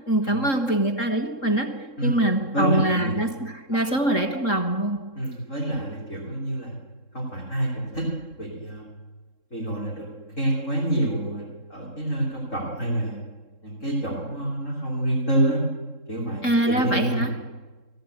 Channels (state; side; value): late; right; 3.7 ms